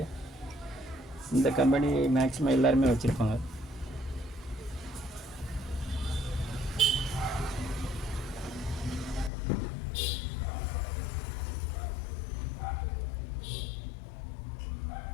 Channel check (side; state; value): right; drops out; at 9.3 s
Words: இந்த கம்பெனி மேக்ஸிமம் எல்லாருமே வச்சுருப்பாங்க.